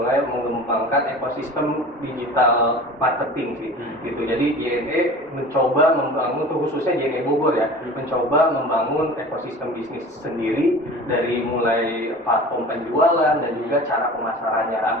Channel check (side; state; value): both; normal; correlation 0.39